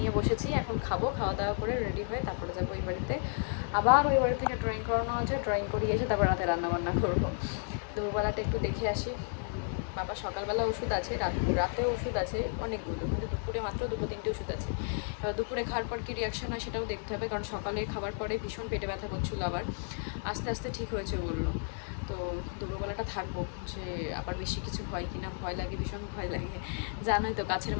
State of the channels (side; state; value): right; silent; 56 dB below the other